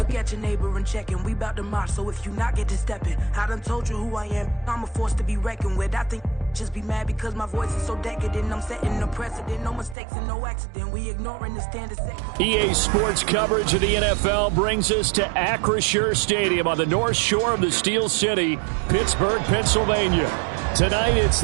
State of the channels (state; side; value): drops out; left; at 10.0 s